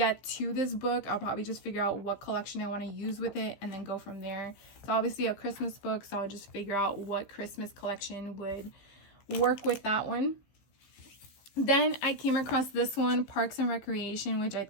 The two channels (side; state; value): right; late; 15 ms